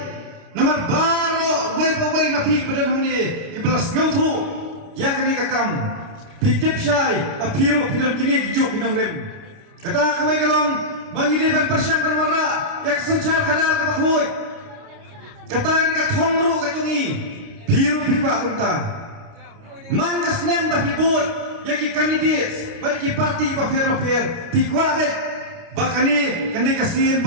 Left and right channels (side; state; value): left; late; 29 ms